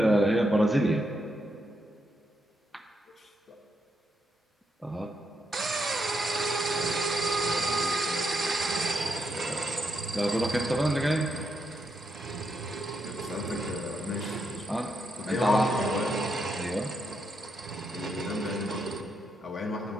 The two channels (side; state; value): both; normal; correlation 0.80